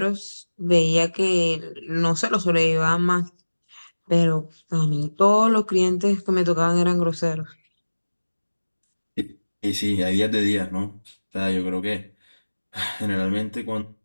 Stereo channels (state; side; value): inverted; both; correlation -1.00